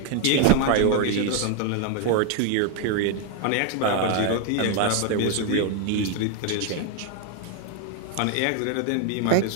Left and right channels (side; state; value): both; different; correlation 0.01